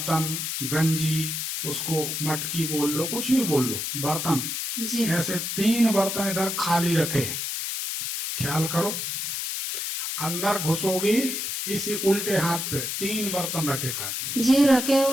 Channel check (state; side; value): noise; left; hiss, 3 dB below the sound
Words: गंजी, उसको मटकी बोल लो, कुछ भी बोल लो, बर्तन। जी। ऐसे 3 बर्तन इधर खाली रखे। ख्याल करो, अंदर घुसोगी इसी उल्टे हाथ पे 3 बर्तन रखे खाली। जी रखे